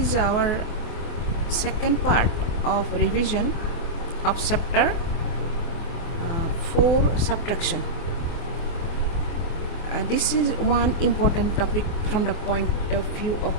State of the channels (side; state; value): right; late; 24 ms